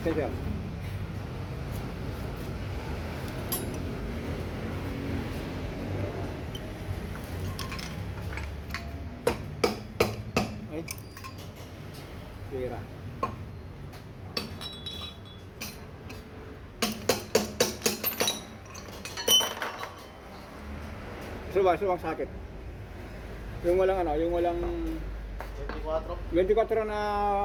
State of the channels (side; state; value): both; identical; correlation 1.00